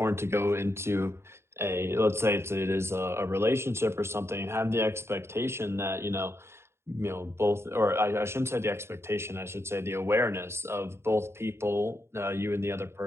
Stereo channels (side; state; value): left; late; 0.12 ms